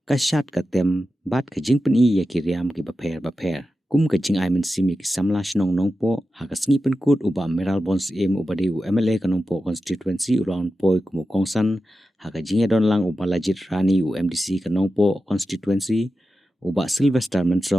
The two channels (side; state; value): both; normal; correlation 0.92